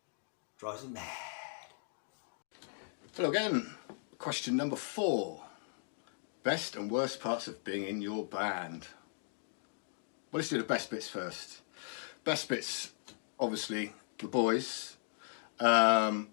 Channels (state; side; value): silent; right; digital silence